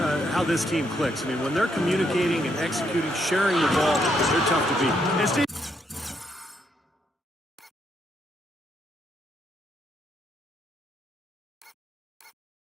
how this team clicks. I mean, when they're communicating and executing, sharing the ball, they're tough to beat. And Steve,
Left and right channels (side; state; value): both; normal; correlation 0.75